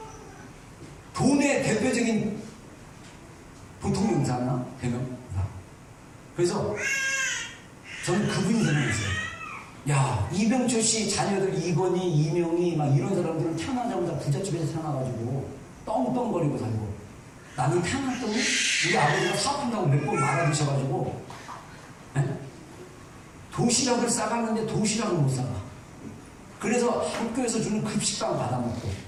돈의 대표적인 보통 용사나 대명사. 그래서 저는 그분이 생각했어요. 야, 이병철 씨 자녀들 이건희, 이명희 막 이런 사람들은 태어나자마자 부잣집에서 태어나가지고 떵떵거리고 살고, 나는 태어났더니 우리 아버지가 사업한다고 몇 번 말아드셔가지고 도시락을 싸갔는데 도시락을 못 싸가. 그래서 학교에서 주는 급식빵 받아먹고,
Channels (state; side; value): identical; both; correlation 1.00